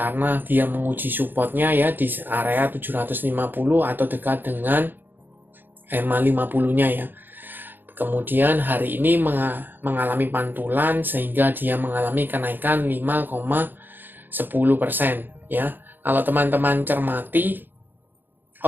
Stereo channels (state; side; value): late; left; 0.093 ms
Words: dia menguji supportnya ya di area 750 atau dekat dengan EMA 50-nya ya. Kemudian hari ini mengalami pantulan sehingga dia mengalami kenaikan 5,10% ya. Kalau teman-teman cermati,